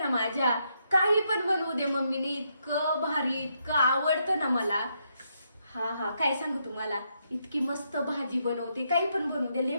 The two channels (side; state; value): both; inverted; correlation -0.78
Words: माझ्या. काही पण बनवू दे मम्मीने, इतकं भारी, इतकं आवडतं ना मला. हा काय सांगू तुम्हाला, इतकी मस्त भाजी बनवते, काही पण बनवू दे, लय